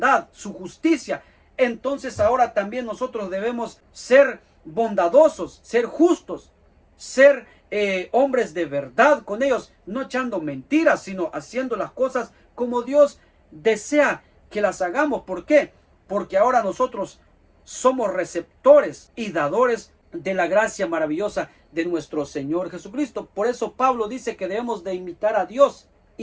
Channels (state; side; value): identical; both; correlation 1.00